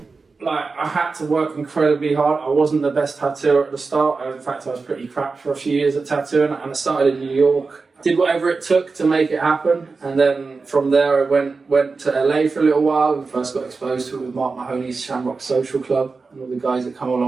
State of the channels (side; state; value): left; quieter; 4.3 dB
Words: I had to work incredibly hard. I wasn't the best tattooer at the start. In fact, I was pretty crap for a few years at tattooing, and I started in New York. Did whatever it took to make it happen, and then from there I went to LA for a little while and first got exposed to it with Mark Mahoney's Shamrock Social Club and all the guys that come